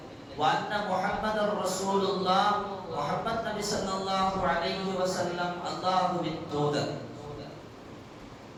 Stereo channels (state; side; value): identical; both; correlation 1.00